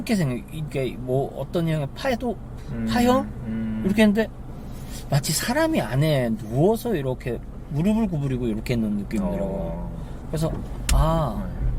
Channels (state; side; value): identical; both; correlation 1.00